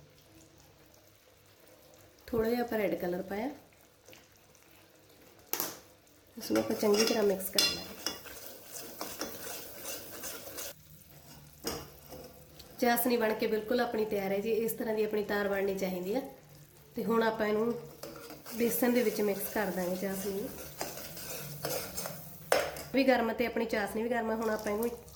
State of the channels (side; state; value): both; identical; correlation 1.00